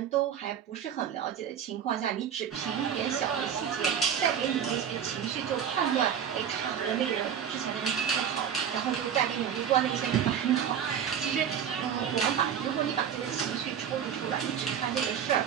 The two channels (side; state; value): left; quieter; 8.5 dB